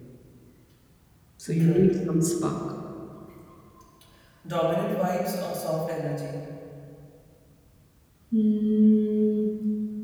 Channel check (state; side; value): identical; both; correlation 1.00